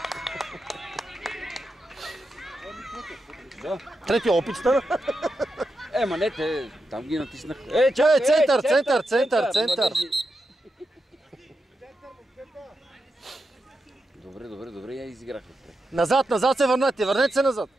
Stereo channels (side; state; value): both; normal; correlation 0.87